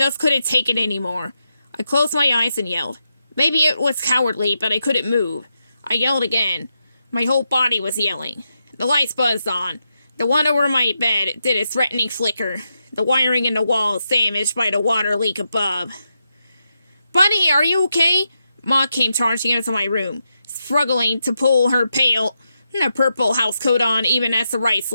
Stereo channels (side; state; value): both; inverted; correlation -0.85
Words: couldn't take it anymore. I closed my eyes and yelled. Maybe it was cowardly, but I couldn't move. I yelled again. My whole body was yelling. The lights buzzed on. The one over my bed did a threatening flicker. The wiring in the wall damaged by the water leak above. Buddy, are you okay? Ma came charging into my room, struggling to pull her pale, purple housecoat on even as the right